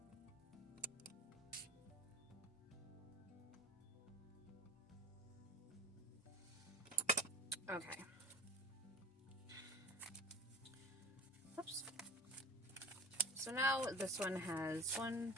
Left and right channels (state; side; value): normal; both; correlation 0.37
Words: Okay. Oops. So now this one has 1,